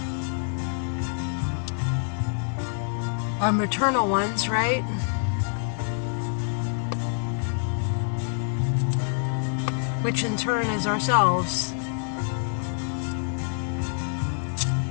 our maternal ones, right? Which in turn is ourselves.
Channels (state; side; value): silent; right; digital silence